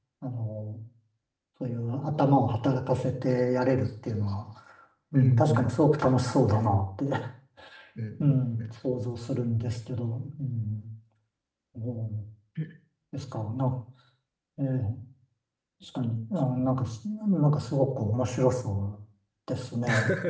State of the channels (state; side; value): identical; both; correlation 1.00